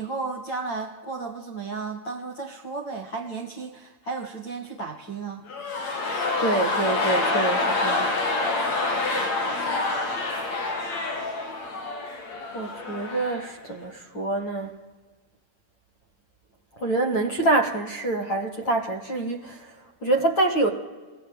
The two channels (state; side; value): late; right; 8.7 ms